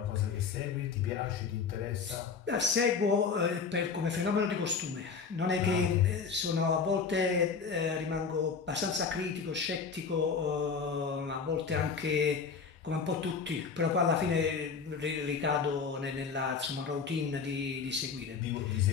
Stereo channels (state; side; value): quieter; right; 5.5 dB